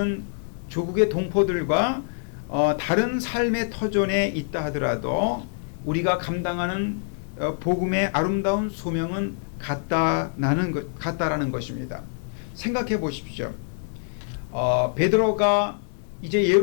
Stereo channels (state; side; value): silent; right; digital silence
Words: 조국의 동포들과 다른 삶의 터전에 있다 하더라도 우리가 감당하는 복음의 아름다운 소명은 같다라는 것입니다. 생각해 보십시오. 베드로가 이제